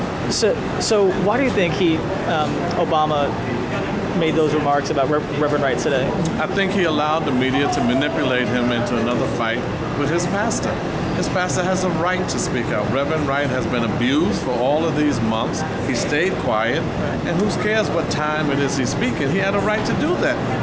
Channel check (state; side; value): identical; both; correlation 1.00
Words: So why do you think Obama made those remarks about Reverend Wright today? I think he allowed the media to manipulate him into another fight with his pastor. His pastor has a right to speak out. Reverend Wright has been abused for all of these months. He stayed quiet, and who cares what time it is he's speaking? He had a right to do that.